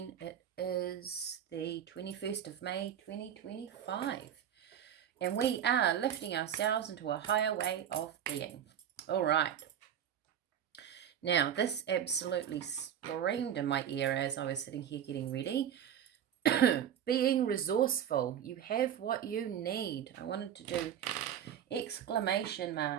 It is the 21st of May, 2025, and we are lifting ourselves into a higher way of being. All right. Now, this absolutely screamed in my ear as I was sitting here getting ready. Being resourceful. You have what you need. I wanted to do exclamation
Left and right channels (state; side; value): quieter; left; 9.5 dB